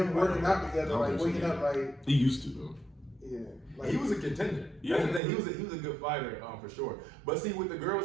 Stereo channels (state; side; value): drops out; left; at 5.2 s